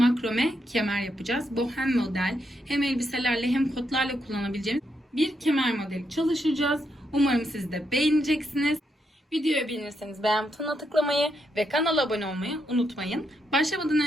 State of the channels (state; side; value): normal; both; correlation 0.81